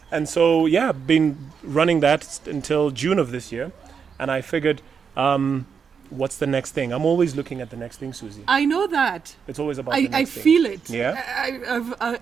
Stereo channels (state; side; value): quieter; left; 6.4 dB